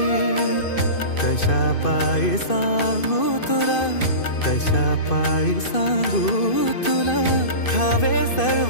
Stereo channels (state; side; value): late; right; 2.5 ms